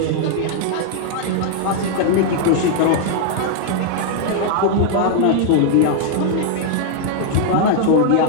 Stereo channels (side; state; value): both; different; correlation 0.00